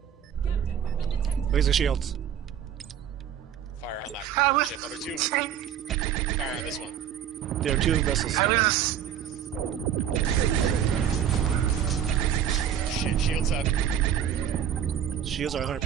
Captain, we've been detected. Raising shields. Fire on that ship. Other two. Fire on this one. There are 2 vessels. Shit, shields up. Shields are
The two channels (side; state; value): left; quieter; 9.3 dB